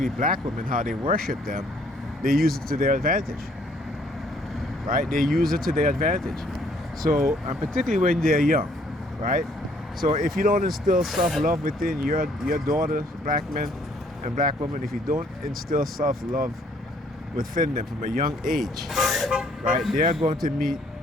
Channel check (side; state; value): both; normal; correlation 0.63